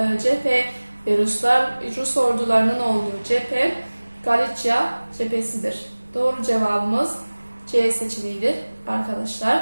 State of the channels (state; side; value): inverted; both; correlation -1.00